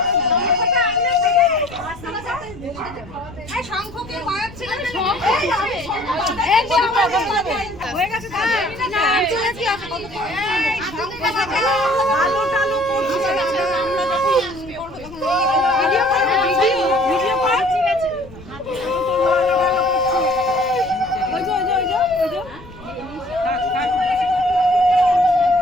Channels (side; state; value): left; noise; rumble, 19 dB below the sound